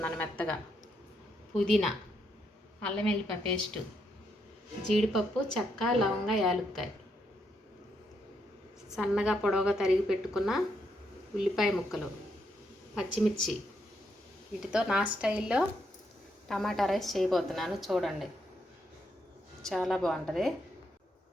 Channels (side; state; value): both; normal; correlation 0.78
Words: మెత్తగా, పుదీనా, అల్లం వెల్లిపాయ పేస్టు, జీడిపప్పు, చెక్క, లవంగ, యాలుక్కాయ, సన్నగా పొడవుగా తరిగి పెట్టుకున్న ఉల్లిపాయ ముక్కలు, పచ్చిమిర్చి. వీటితో నా స్టైల్లో టమాటా రైస్ చేయబోతున్నాను. చూడండి, చాలా బాగుంటుంది.